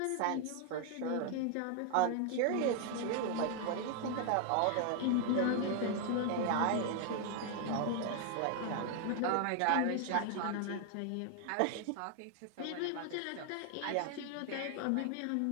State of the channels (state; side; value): different; both; correlation 0.00